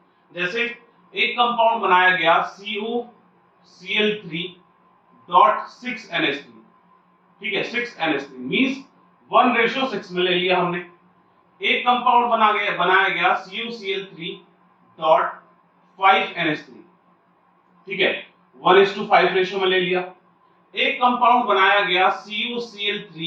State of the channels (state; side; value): identical; both; correlation 1.00